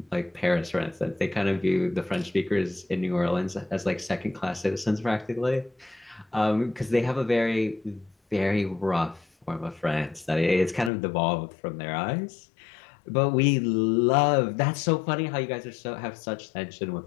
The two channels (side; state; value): right; drops out; at 10.9 s